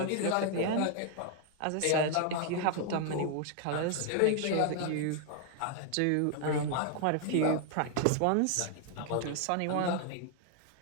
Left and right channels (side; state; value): both; different; correlation 0.00